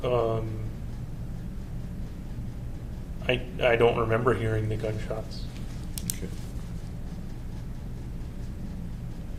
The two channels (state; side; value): identical; both; correlation 1.00